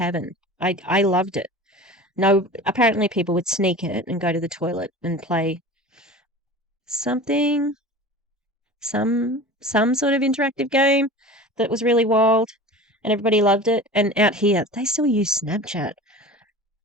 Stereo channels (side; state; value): both; normal; correlation 0.36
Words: I loved it. No, apparently people would sneak it and go to the toilet and play something, some sort of interactive game that was really wild and everybody loved it. And out here, they still use Snapchat.